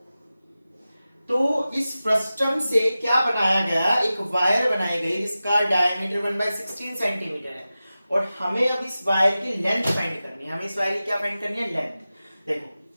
तो इस फ्रस्टम से क्या बनाया गया, एक वायर बनाई गई जिसका डायमीटर 1/16 सेंटीमीटर है और हमें अब इस वायर की लेंथ फाइंड करनी है। हमें इस वायर की क्या फाइंड करनी है, लेंथ। देखो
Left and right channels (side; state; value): both; inverted; correlation -0.95